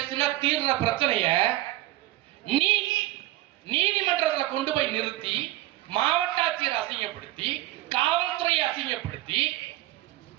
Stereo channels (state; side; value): quieter; left; 16.3 dB